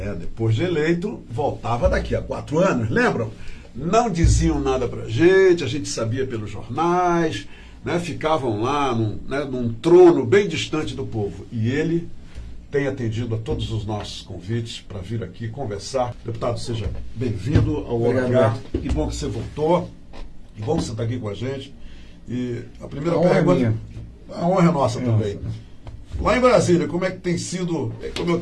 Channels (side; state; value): both; identical; correlation 1.00